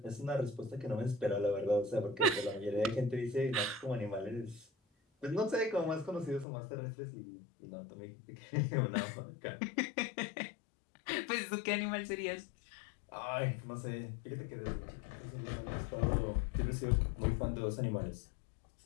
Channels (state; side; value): drops out; right; at 6.5 s